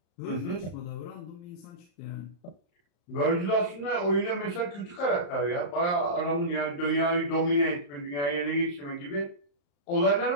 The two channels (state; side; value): late; right; 35 ms